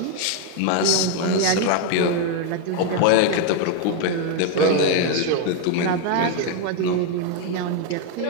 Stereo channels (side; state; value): both; different; correlation 0.01